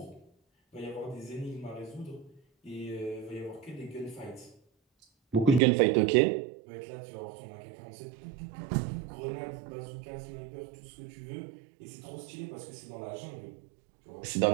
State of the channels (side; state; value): left; drops out; at 5.6 s